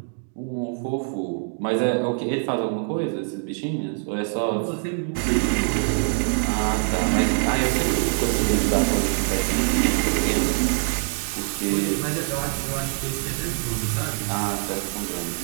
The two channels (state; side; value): silent; left; 59 dB below the other